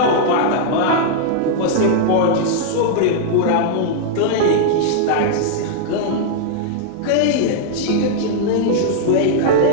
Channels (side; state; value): both; different; correlation -0.01